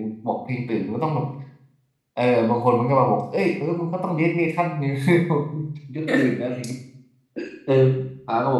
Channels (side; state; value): both; identical; correlation 1.00